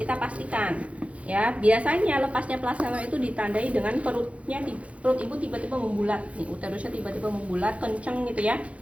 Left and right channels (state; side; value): late; left; 0.064 ms